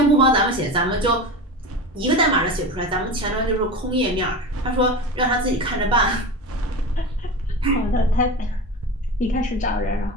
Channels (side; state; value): both; normal; correlation 0.27